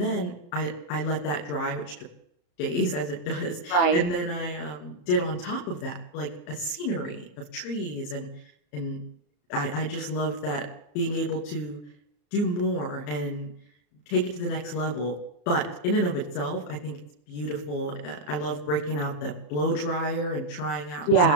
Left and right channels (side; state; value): right; late; 34 ms